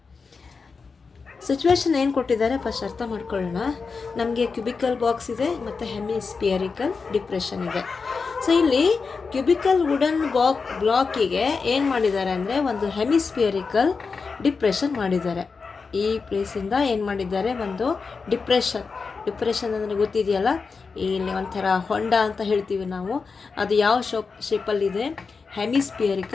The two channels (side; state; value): right; quieter; 4.8 dB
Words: Situation ಏನು ಕೊಟ್ಟಿದ್ದಾರೆ first ಅರ್ಥ ಮಾಡ್ಕೊಳ್ಳೋಣ. ನಮಗೆ cubical box ಇದೆ ಮತ್ತು ಹೆಮಿಸ್ಪಿಯರಿಕಲ್ depression ಇದೆ. So ಇಲ್ಲಿ cubical wooden ಬ್ಲಾಕಿಗೆ ಏನು ಮಾಡಿದ್ದಾರೆ ಅಂದರೆ ಒಂದು ಹೆಮಿಸ್ಪಿಯರಿಕಲ್ ಡಿಪ್ರೆಷನ್ ಮಾಡಿದ್ದಾರೆ. ಈ ಪ್ಲೇಸಿಂದ ಏನು ಮಾಡಿದ್ದಾರೆ, ಒಂದು ಡಿಪ್ರೆಷನ್ ಅಂದರೆ ಗೊತ್ತಿದೆಯಲ್ಲ, ಇಲ್ಲಿ ಒಂಥರ ಹೊಂಡ ಅಂತ ಹೇಳ್ತೀವಿ ನಾವು, ಅದು ಯಾವ ಶೇಪಲ್ಲಿದೆ,